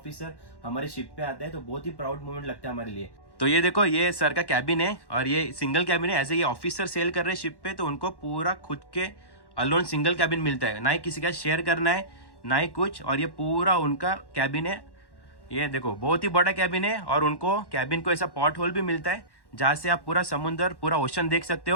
हमारे शिप पे आता है तो बहुत ही प्राउड मोमेंट लगता है हमारे लिए। तो ये देखो, ये सर का कैबिन है और ये सिंगल कैबिन है। ऐसे ये ऑफिसर सेल कर रहे हैं शिप पे, तो उनको पूरा खुद के अलोन सिंगल कैबिन मिलता है, ना ही किसी का शेयर करना है ना ही कुछ। और ये पूरा उनका कैबिन है। ये देखो बहुत ही बड़ा कैबिन है, और उनको कैबिन को ऐसा पॉट होल भी मिलता है जहाँ से आप पूरा समुंदर, पूरा ओशन देख सकते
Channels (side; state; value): right; late; 1.1 ms